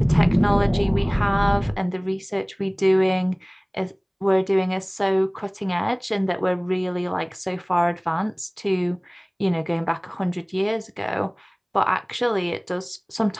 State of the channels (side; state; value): both; identical; correlation 1.00